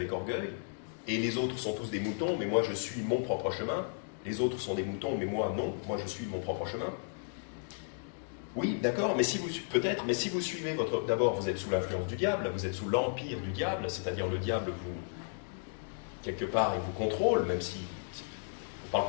orgueil. Et les autres sont tous des moutons, mais moi je suis mon propre chemin. Les autres sont des moutons, mais moi non, moi je suis mon propre chemin. Oui, d'accord, mais si vous suivez d'abord, vous êtes sous l'influence du diable, vous êtes sous l'empire du diable, c'est-à-dire le diable quelque part, il vous contrôle, même si on ne parle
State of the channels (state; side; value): silent; right; digital silence